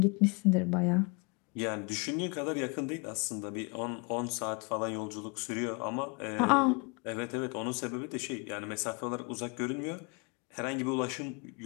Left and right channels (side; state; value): right; quieter; 31.7 dB